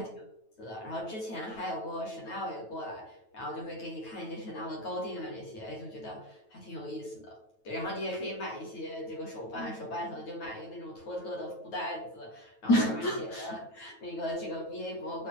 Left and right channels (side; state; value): right; late; 9.2 ms